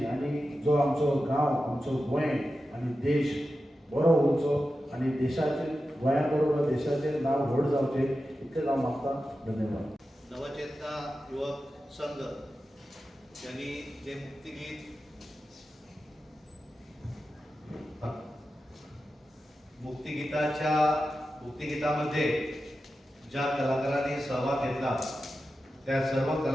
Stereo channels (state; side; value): normal; both; correlation 0.92